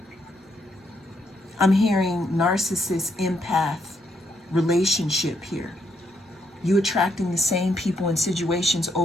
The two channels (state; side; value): normal; both; correlation 0.76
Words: I'm hearing narcissist, empath relationship here. You attracting the same people and situations